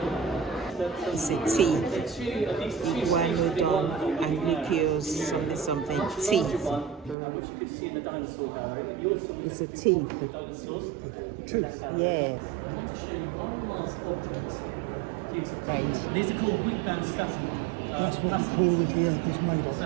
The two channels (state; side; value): drops out; left; at 7.2 s